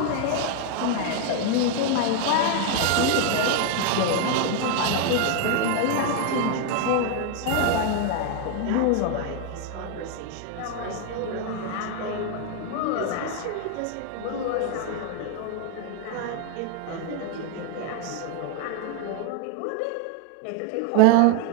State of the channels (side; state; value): both; different; correlation 0.01